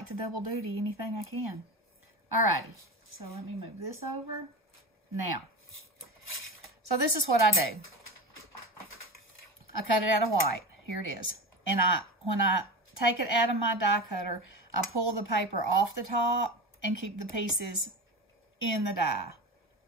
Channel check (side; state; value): both; normal; correlation 0.26